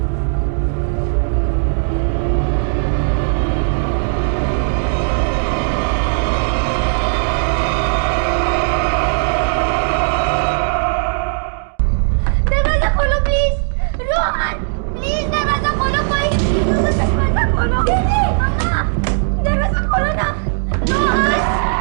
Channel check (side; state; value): left; silent; digital silence